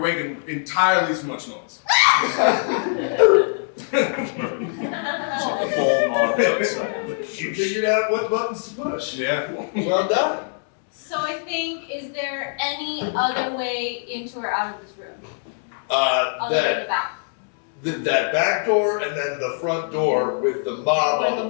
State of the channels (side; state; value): right; silent; digital silence